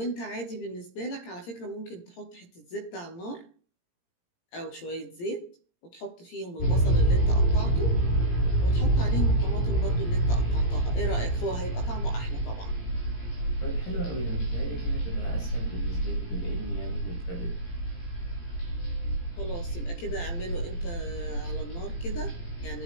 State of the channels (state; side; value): late; right; 17 ms